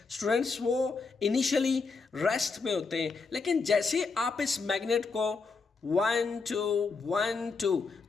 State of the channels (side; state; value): right; quieter; 4.5 dB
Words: स्टूडेंट्स वो इनिशियली रेस्ट में होते हैं, लेकिन जैसे आप इस मैग्नेट को 1 2 1 2,